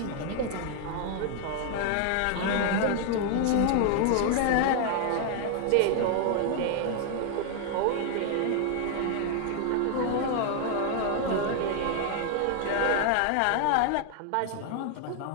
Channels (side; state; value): both; different; correlation 0.00